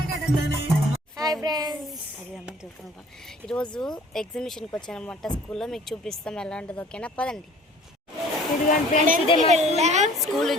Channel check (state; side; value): normal; both; correlation 0.52